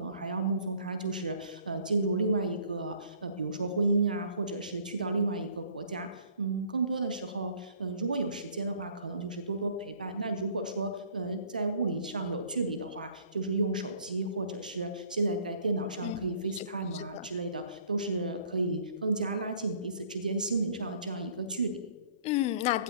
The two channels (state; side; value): inverted; both; correlation -0.56